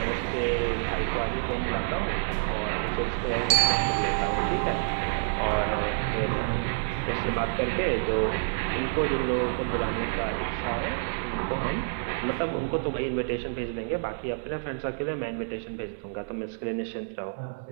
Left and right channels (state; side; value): silent; left; 59 dB below the other